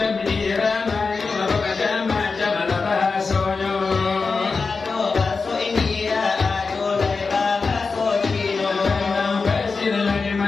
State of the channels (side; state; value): right; quieter; 4.5 dB